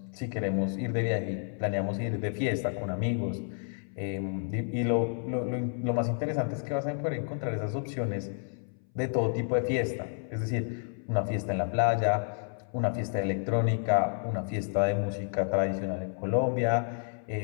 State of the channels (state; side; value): silent; right; 58 dB below the other